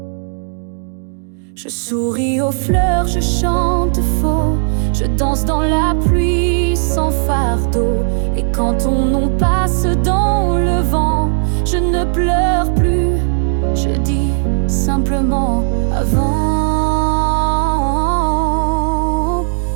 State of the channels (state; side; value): silent; left; digital silence